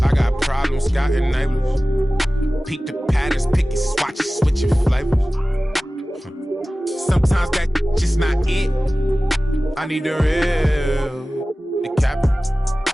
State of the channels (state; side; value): normal; both; correlation 0.97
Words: got problems, got enablers. Peek the patterns, pick your swatches, switch your flavors. Sometimes that just not it. I need the real.